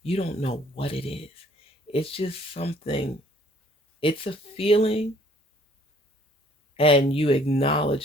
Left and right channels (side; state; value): both; normal; correlation 0.59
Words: you don't know what it is. It's just something, it's a feeling, and you